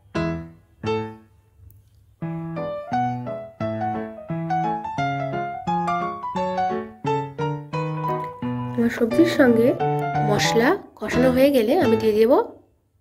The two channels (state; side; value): identical; both; correlation 1.00